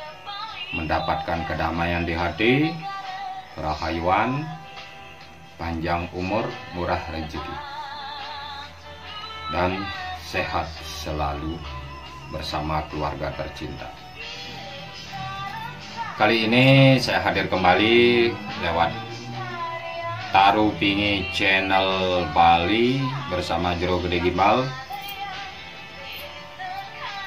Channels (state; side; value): identical; both; correlation 1.00